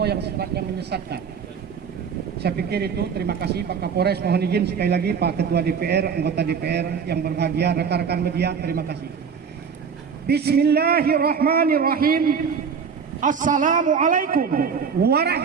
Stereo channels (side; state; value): left; quieter; 6.4 dB